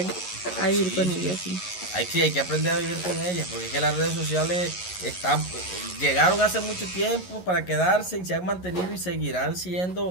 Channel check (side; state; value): right; late; 11 ms